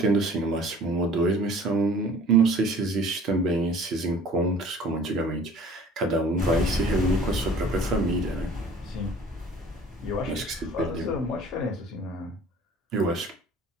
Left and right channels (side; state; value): both; normal; correlation 0.50